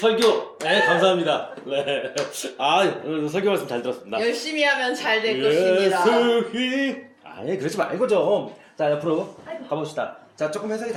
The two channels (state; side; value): identical; both; correlation 1.00